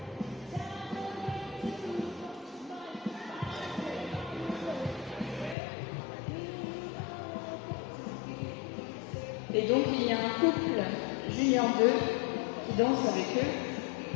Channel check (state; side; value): drops out; right; at 5.6 s